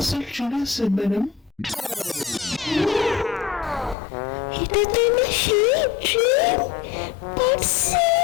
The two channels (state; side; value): drops out; right; at 4.0 s